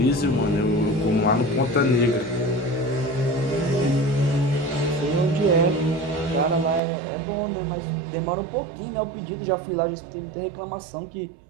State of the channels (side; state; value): left; drops out; at 6.8 s